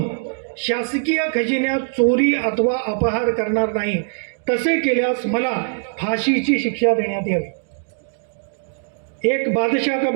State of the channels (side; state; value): left; silent; digital silence